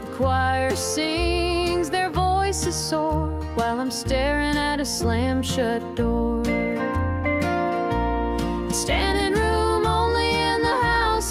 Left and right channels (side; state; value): both; identical; correlation 1.00